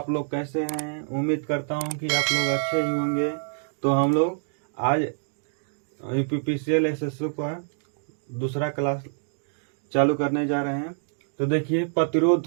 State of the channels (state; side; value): silent; left; digital silence